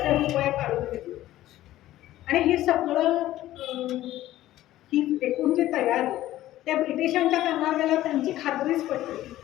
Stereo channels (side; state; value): right; quieter; 14.6 dB